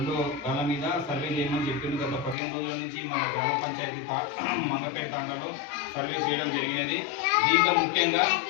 గల మీద సర్వే చేయమని చెప్పింది. గత 15 రోజుల నుంచి మన గ్రామ పంచాయతీ మంగపేట తాండాలో సర్వే చేయడం జరిగినది. దీంట్లో ముఖ్యంగా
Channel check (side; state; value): right; drops out; at 2.4 s